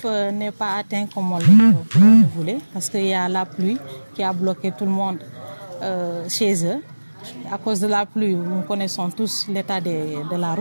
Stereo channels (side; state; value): both; inverted; correlation -1.00